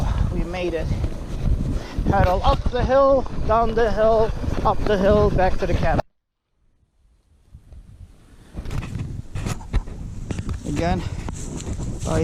we made it. Pedal up the hill, down the hill, up the hill, back to the cabin. Again, I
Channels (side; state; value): both; identical; correlation 1.00